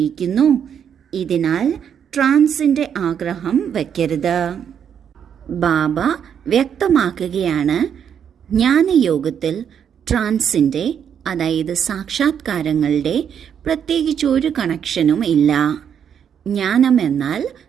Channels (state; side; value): quieter; left; 8.2 dB